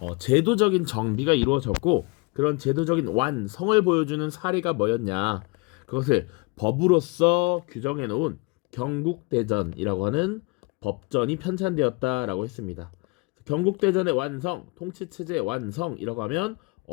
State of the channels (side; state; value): right; quieter; 28.6 dB